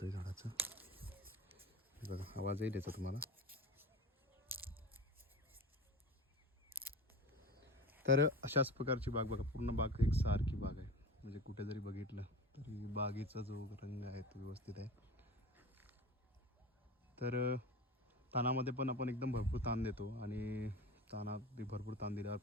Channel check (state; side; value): normal; both; correlation 0.32